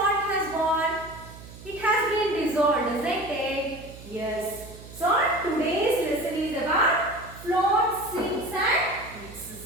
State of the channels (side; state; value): right; noise; hum, 17 dB below the sound